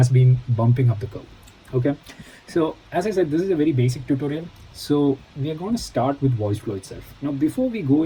been bumping up the curve. Okay, so as I said, this is a very basic tutorial. So we are going to start with voice flow itself. Now before we go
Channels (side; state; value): both; identical; correlation 1.00